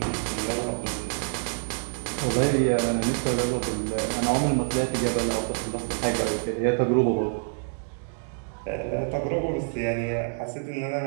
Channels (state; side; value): silent; left; digital silence